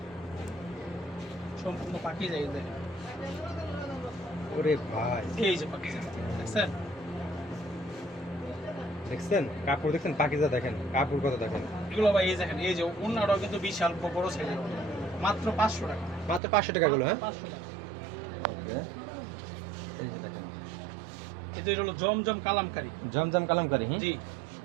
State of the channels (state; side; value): drops out; left; at 16.4 s